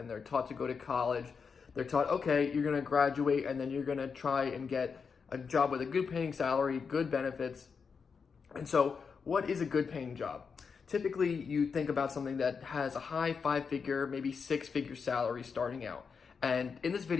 they're taught to go to college, they're taught, okay, you're going to graduate and then you're going to try and get a job with a good paying salary, good benefits. And so, what is a good paying job? Typically, you think about something that has a high five-figure, maybe six-figure salary starting out. And in this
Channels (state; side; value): quieter; right; 5.7 dB